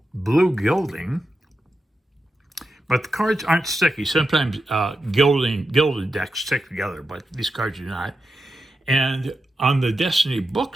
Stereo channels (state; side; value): normal; both; correlation 0.89